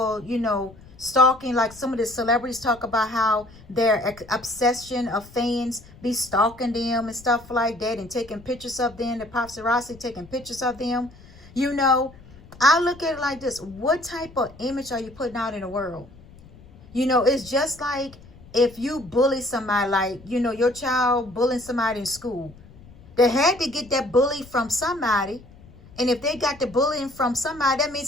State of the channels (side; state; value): left; noise; rumble, 22 dB below the sound